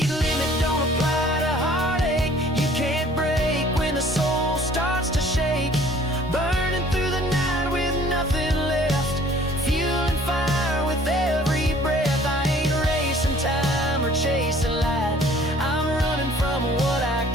limit don't apply to heartache. You can't break when the soul starts to shake. Burning through the night with nothing left, fueling fire with every breath. I ain't racing time or chasing light, I'm running from what I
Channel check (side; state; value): both; normal; correlation 0.54